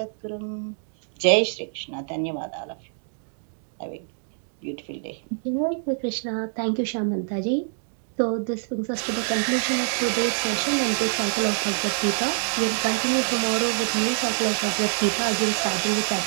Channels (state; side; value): silent; left; digital silence